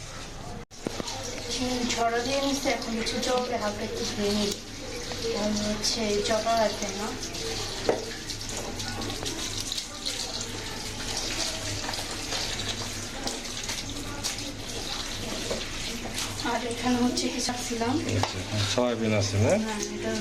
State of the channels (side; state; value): both; identical; correlation 1.00